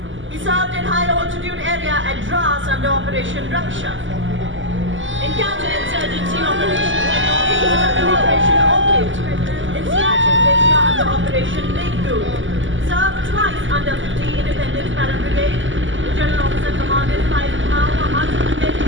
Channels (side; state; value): left; late; 0.55 ms